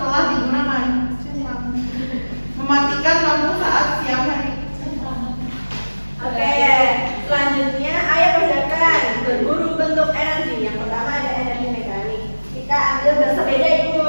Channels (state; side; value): inverted; both; correlation -1.00